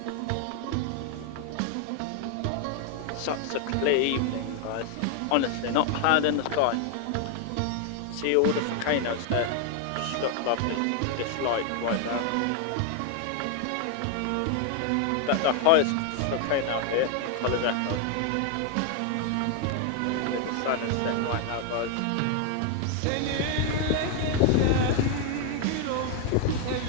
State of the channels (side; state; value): both; different; correlation 0.00